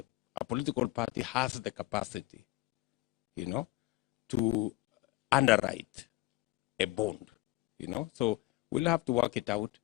a political party has the capacity, to underwrite a bond, So we'll have to work it out,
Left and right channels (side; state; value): right; quieter; 19.2 dB